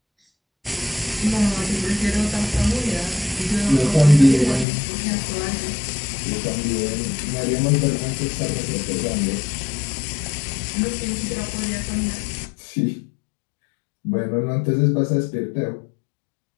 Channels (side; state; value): right; drops out; at 4.7 s